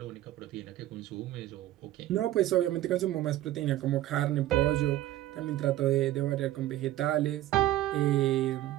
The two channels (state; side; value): quieter; left; 14.5 dB